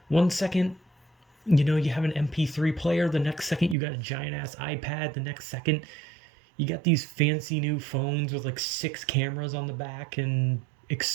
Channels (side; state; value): left; drops out; at 3.8 s